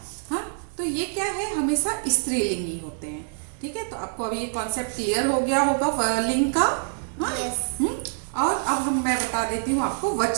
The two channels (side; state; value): left; silent; digital silence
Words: हाँ, तो ये क्या है, हमेशा स्त्रीलिंग ही होते हैं, ठीक है। तो आपको अभी ये कॉन्सेप्ट क्लियर हो गया होगा लिंग का। हाँ? और अब मैं बता देती हूँ आपको